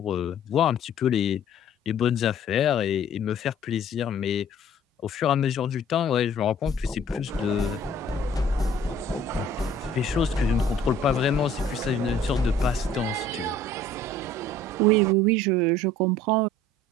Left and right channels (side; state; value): both; normal; correlation 0.52